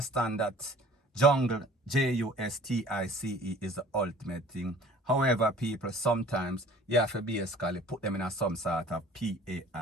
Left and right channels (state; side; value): normal; both; correlation 0.49